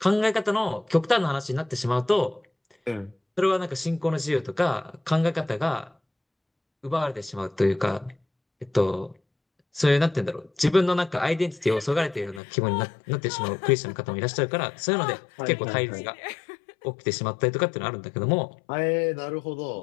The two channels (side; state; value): right; drops out; at 12.4 s